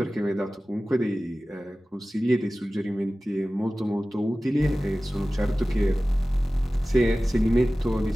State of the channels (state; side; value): normal; both; correlation 0.97